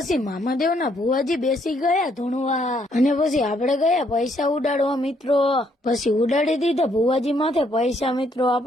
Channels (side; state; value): both; normal; correlation 0.70